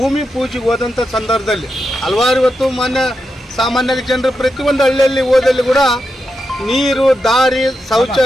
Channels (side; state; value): both; normal; correlation 0.87